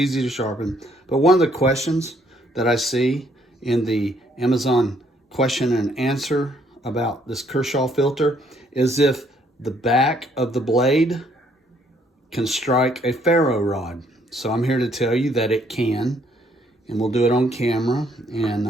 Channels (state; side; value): normal; both; correlation 0.67